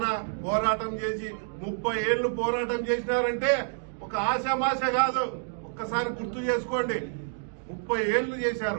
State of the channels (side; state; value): left; silent; digital silence